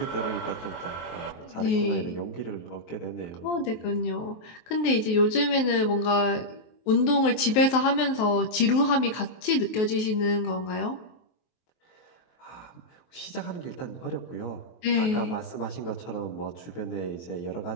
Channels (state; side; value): late; right; 23 ms